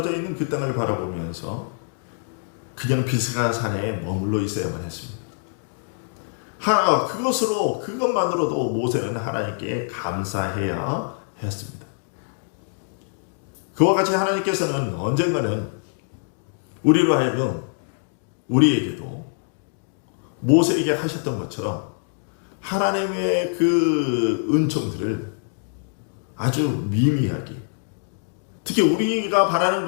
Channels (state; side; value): silent; right; digital silence